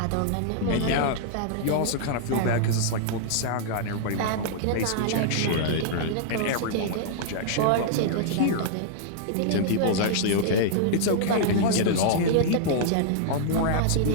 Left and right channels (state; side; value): different; both; correlation -0.01